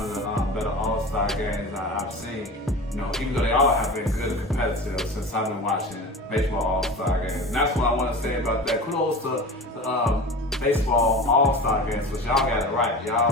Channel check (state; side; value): normal; both; correlation 0.33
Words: of the better All-Star games I've seen. You know, even though they all have been good and competitive since I've been watching baseball All-Star games. And that's what I want to say about that. Kudos to baseball All-Star games, because y'all got it right.